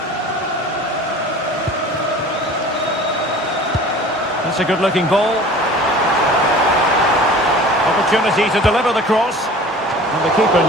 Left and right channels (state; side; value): normal; both; correlation 0.43